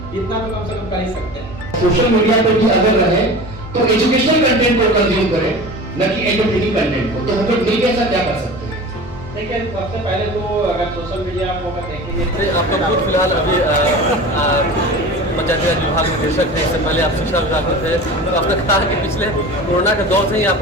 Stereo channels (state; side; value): normal; both; correlation 0.35